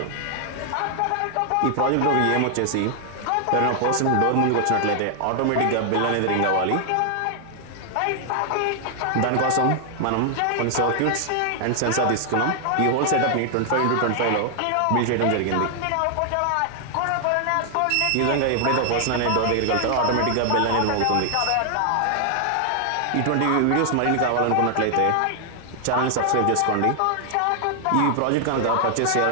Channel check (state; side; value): different; both; correlation 0.00